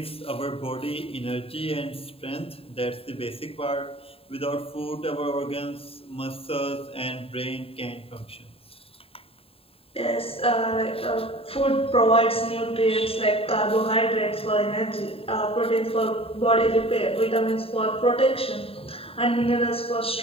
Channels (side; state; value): right; late; 0.27 ms